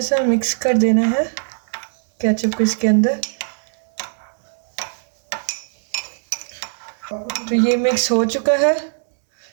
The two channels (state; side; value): silent; left; 66 dB below the other